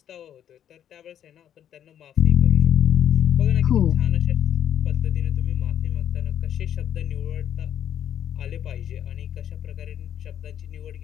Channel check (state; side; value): quieter; right; 10.0 dB